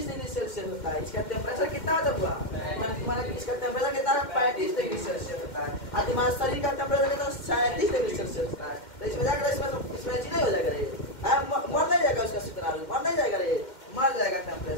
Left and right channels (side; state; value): right; late; 2.1 ms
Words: डिग्री सेल्सियस होता है। इसका टेम्परेचर कितना हुआ? इसका टेम्परेचर कितना है? 35 डिग्री सेल्सियस होता है। और तुम्हारे शरीर का टेम्परेचर कितना? 37 डिग्री सेल्सियस होता है। तो इसमें जाकर इसमें नहीं हो जाएगा रे, मर नहीं जाएगा उसका शुक्राणु, मर नहीं जाएगा रे, मर जाएगा